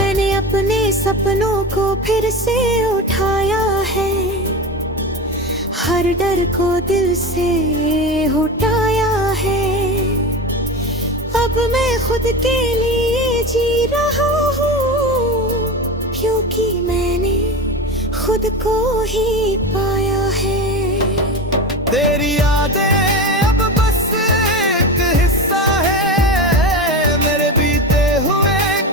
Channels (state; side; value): normal; both; correlation 0.24